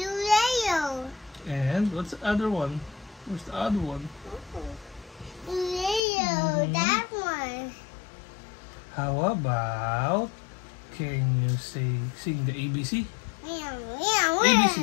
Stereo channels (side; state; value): right; drops out; at 6.0 s